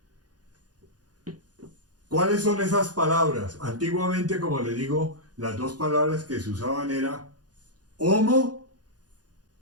¿Cuáles son esas palabras? Antiguamente, como les digo, las 2 palabras que se usaban era homo,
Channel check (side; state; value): left; late; 0.69 ms